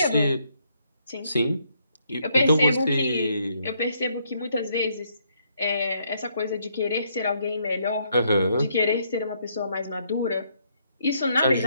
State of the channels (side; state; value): both; inverted; correlation -0.72